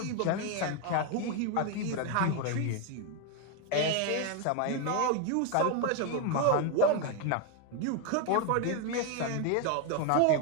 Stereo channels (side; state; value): both; different; correlation 0.01